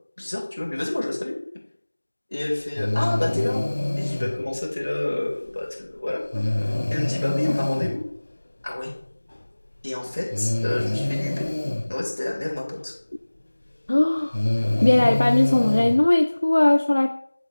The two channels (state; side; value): inverted; both; correlation -1.00